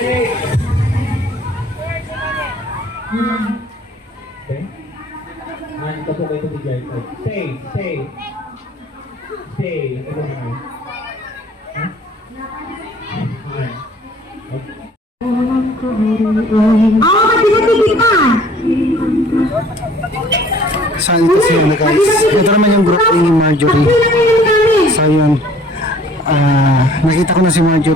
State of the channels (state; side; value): normal; both; correlation 0.54